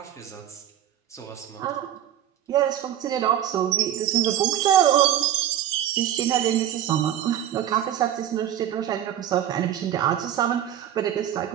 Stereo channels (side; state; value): left; quieter; 11.0 dB